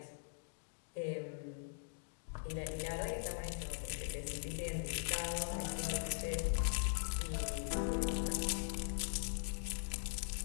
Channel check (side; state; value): right; silent; digital silence